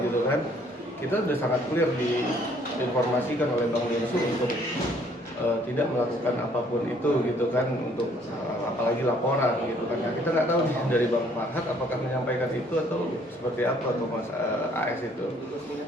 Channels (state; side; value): normal; both; correlation 0.62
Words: kan, kita udah sangat clear diinformasikan oleh Bang Densu untuk tidak melakukan apapun itu gitu kan, untuk apalagi laporan gitu kan. Nah, kita nggak tahu dari Bang Farhad apakah menyampaikan itu atau seperti apa atau Mas AS itu.